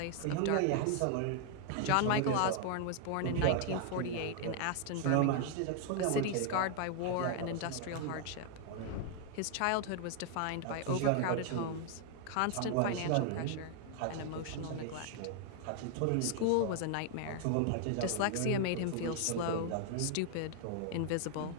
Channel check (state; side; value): different; both; correlation 0.00